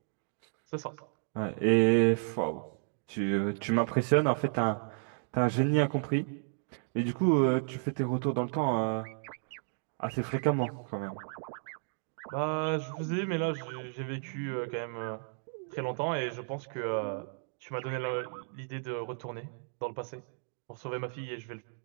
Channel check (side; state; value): left; silent; 56 dB below the other